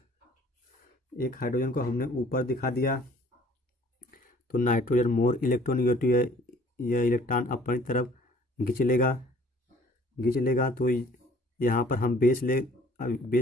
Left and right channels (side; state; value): both; normal; correlation 0.55